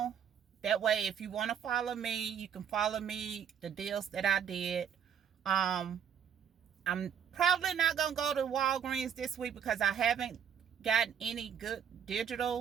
That way, if you want to follow me, you can follow me, the deals that I did. I'm probably not going to go to Walgreens this week because I haven't gotten any good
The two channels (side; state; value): left; quieter; 8.3 dB